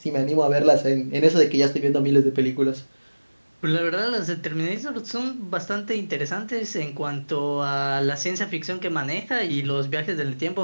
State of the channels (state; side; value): inverted; both; correlation -1.00